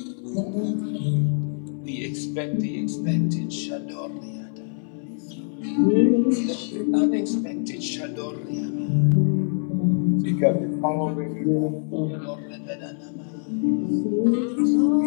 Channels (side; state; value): right; silent; 58 dB below the other